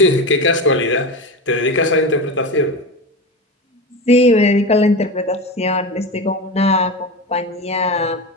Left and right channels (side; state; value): both; normal; correlation 0.23